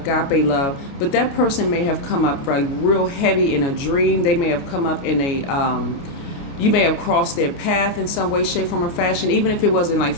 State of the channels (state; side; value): late; right; 29 ms